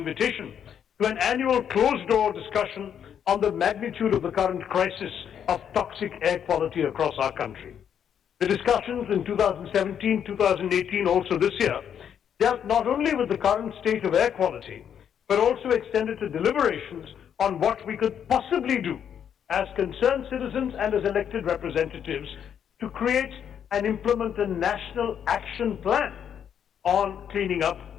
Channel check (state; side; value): quieter; right; 8.6 dB